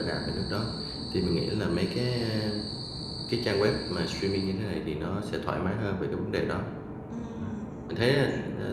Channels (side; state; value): both; identical; correlation 1.00